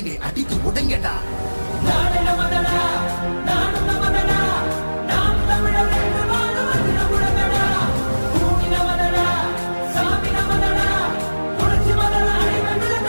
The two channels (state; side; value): inverted; both; correlation -1.00